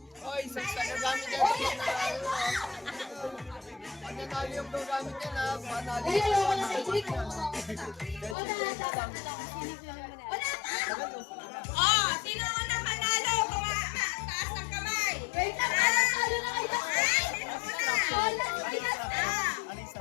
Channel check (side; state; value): right; drops out; at 8.3 s